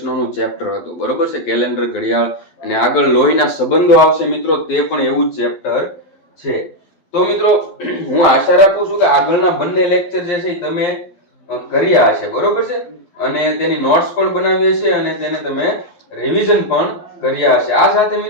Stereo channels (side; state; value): right; late; 12 ms